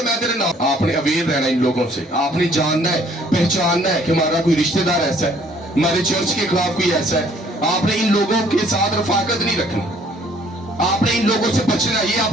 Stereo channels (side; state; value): both; normal; correlation 0.60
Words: میں تیرے نام. آپ نے اویئر رہنا ان لوگوں سے. آپ نے جاننا ہے، پہچاننا ہے کہ ہمارا کوئی رشتہ دار ایسا ہے، ہمارے چرچ کے خلاف کوئی ایسا ہے. آپ نے ان لوگوں کے ساتھ رفاقت نہیں رکھنی. آپ نے ان لوگوں سے بچنا. یہ